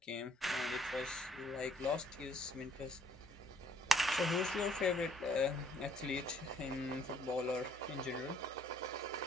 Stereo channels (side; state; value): both; normal; correlation 0.63